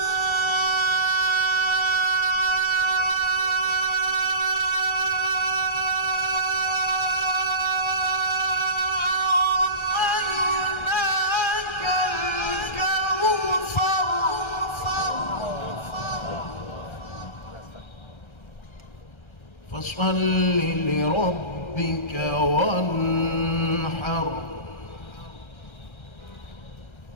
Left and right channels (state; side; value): late; right; 1.3 ms